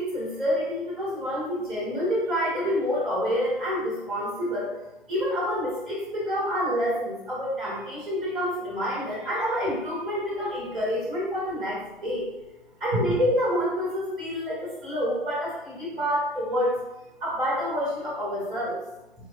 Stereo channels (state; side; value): normal; both; correlation 0.48